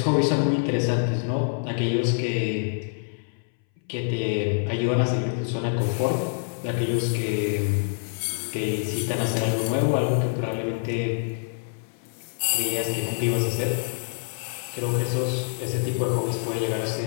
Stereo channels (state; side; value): silent; right; 60 dB below the other